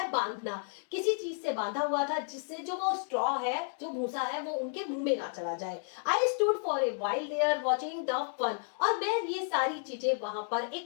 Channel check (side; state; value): right; silent; digital silence